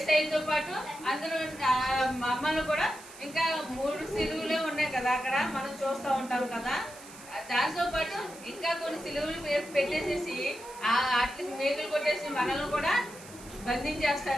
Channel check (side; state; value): right; noise; hiss, 18 dB below the sound